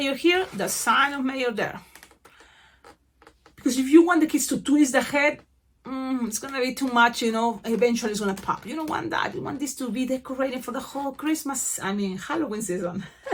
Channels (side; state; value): both; identical; correlation 1.00